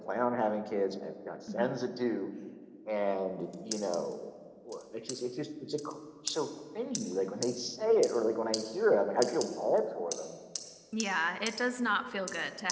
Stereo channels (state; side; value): identical; both; correlation 1.00